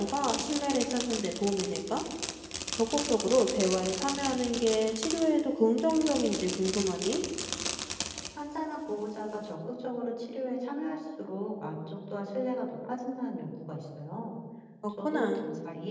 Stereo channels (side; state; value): both; identical; correlation 1.00